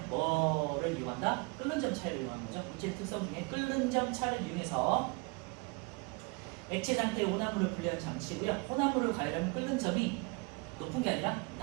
뭐를 이용한다? 끓는 점 차이를 이용하는 거죠. 물질 특성 중에 끓는 점 차를 이용해서 액체 상태의 혼합물을 분리하는 장치고요. 혼합물을 가열하면 끓는 점이 높은 게 아니라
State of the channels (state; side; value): quieter; left; 29.0 dB